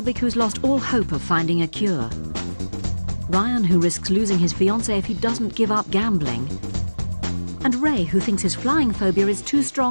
who's lost all hope of finding a cure. Ryan, who risks losing his fiancée if he doesn't give up gambling. And Ray, who thinks his flying phobia is too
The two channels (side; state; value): both; inverted; correlation -1.00